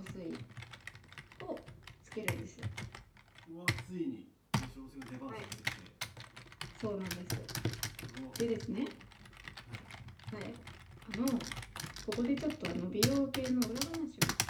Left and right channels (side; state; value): both; identical; correlation 1.00